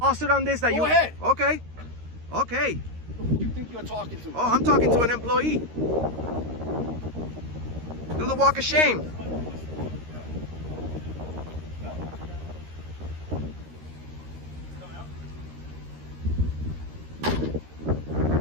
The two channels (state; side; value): late; left; 13 ms